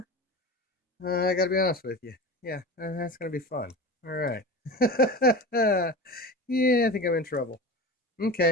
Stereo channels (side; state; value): both; normal; correlation 0.30